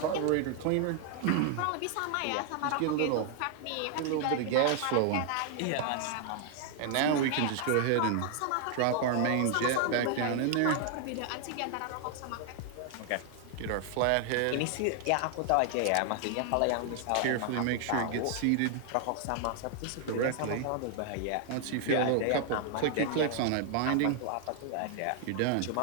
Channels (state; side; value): different; both; correlation 0.00